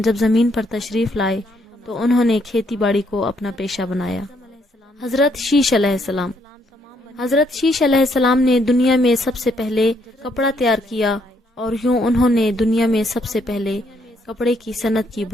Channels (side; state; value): both; normal; correlation 0.72